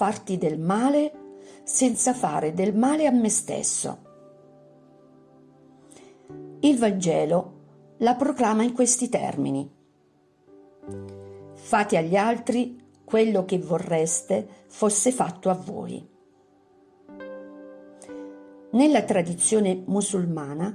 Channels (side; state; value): both; identical; correlation 1.00